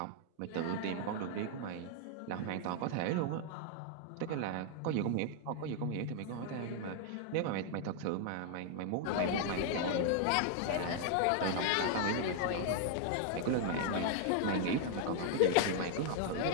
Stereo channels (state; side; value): different; both; correlation 0.00